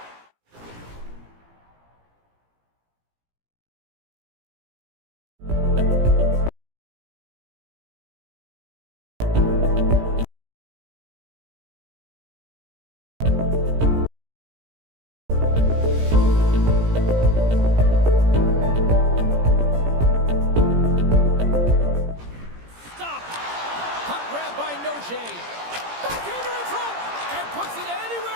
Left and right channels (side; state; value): left; late; 17 ms